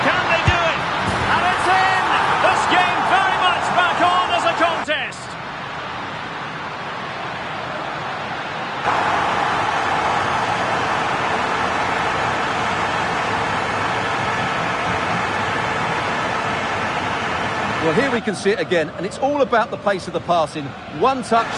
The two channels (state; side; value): identical; both; correlation 1.00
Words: Can they do it? And it's in! This game very much back on as a contest. Well, here we can see it again, and it's all about the pace of the passing. One touch,